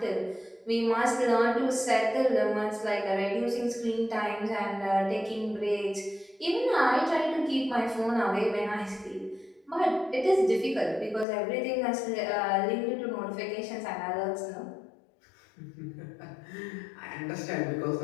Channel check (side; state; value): right; drops out; at 11.2 s